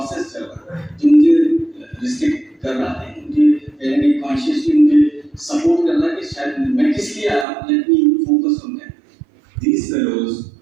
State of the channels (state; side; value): drops out; left; at 7.5 s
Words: चल रहा है, जो मुझे restrict कर रहा है, मुझे कहीं ना कहीं consciously मुझे support कर रहा है कि शायद मैं किस लिए आया. Let me focus on that. These fellows,